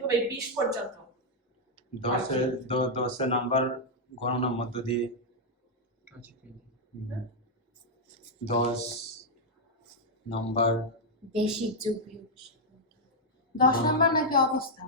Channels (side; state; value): both; normal; correlation -0.02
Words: হবে 20 পর্যন্ত 10 নাম্বার গণনার মধ্য দিয়ে 10 নাম্বার বেসিক যোগ বিয়োগ 10 নাম্বার নাকি